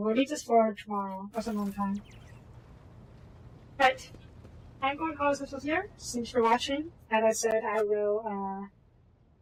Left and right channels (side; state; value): both; identical; correlation 1.00